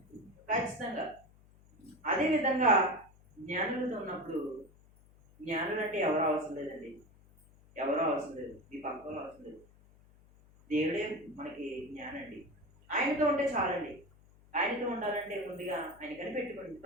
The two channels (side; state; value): left; noise; hum, 26 dB below the sound